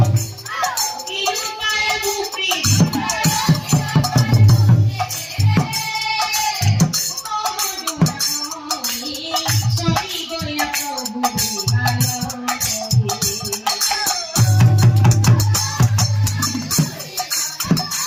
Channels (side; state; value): both; identical; correlation 1.00